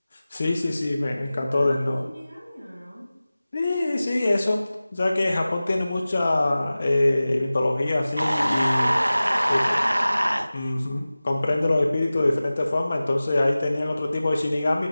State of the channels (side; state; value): both; inverted; correlation -0.97